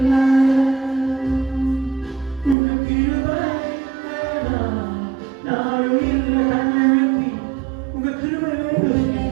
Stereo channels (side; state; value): left; drops out; at 2.6 s